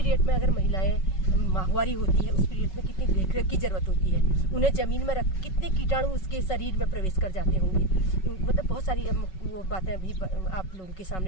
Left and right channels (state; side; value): late; right; 5.3 ms